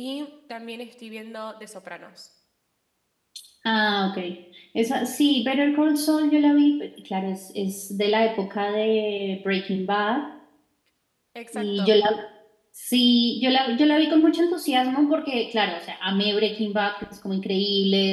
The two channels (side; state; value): both; identical; correlation 1.00